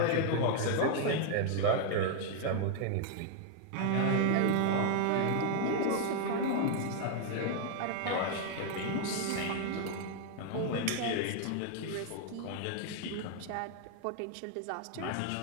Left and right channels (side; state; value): both; different; correlation 0.00